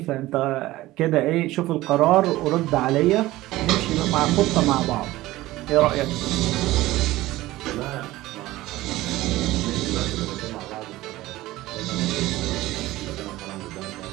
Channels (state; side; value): quieter; left; 17.3 dB